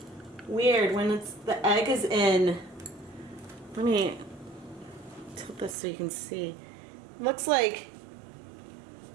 weird when the egg is in. Let me tilt this so you can see. It looks like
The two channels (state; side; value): drops out; left; at 5.8 s